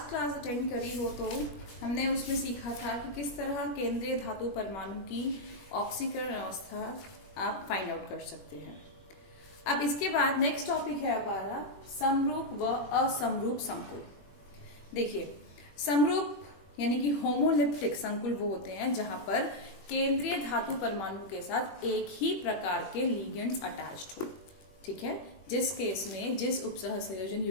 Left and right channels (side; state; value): right; late; 21 ms